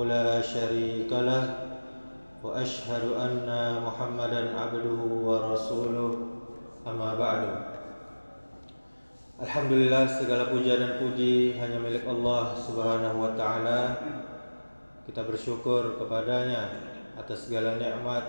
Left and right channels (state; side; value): inverted; both; correlation -1.00